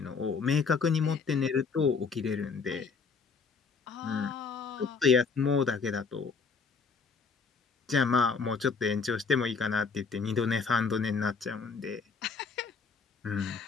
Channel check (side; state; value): right; quieter; 5.1 dB